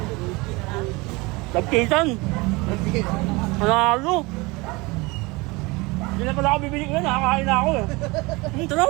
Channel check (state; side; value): quieter; left; 24.3 dB